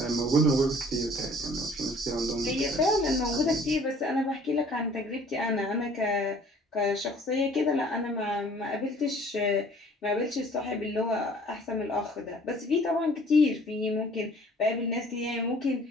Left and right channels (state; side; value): normal; both; correlation 0.53